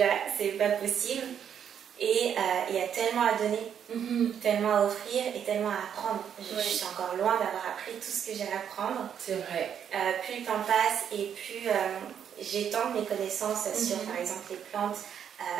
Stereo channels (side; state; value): left; quieter; 8.5 dB